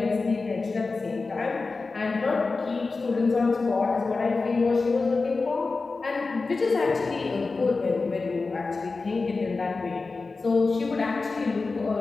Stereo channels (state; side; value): quieter; right; 4.0 dB